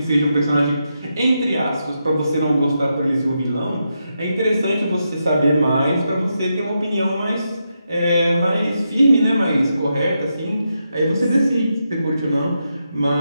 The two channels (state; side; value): inverted; both; correlation -0.85